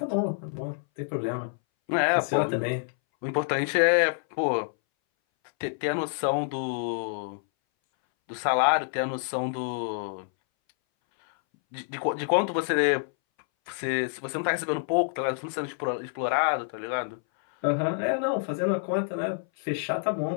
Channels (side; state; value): right; silent; 60 dB below the other